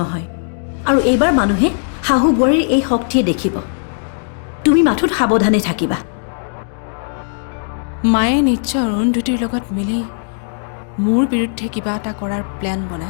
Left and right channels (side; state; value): right; silent; digital silence